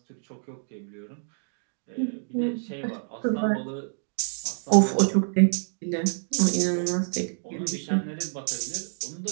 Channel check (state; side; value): silent; left; digital silence